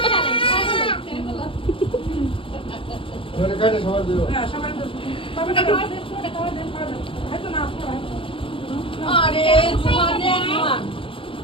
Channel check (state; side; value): late; right; 0.25 ms